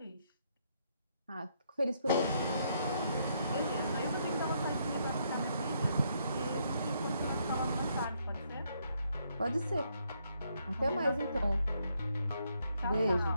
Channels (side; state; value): both; inverted; correlation -0.74